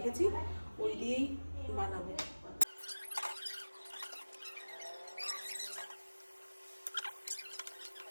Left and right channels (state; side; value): inverted; both; correlation -1.00